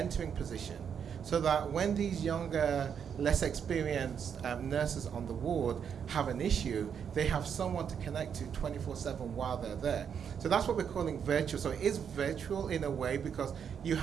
position so that when these younger, less experienced nurses on the ward have an issue, they have someone to connect to 24/7 while they're there. So that's what we're calling virtual. So it is virtual in a way because you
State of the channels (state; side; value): quieter; left; 7.6 dB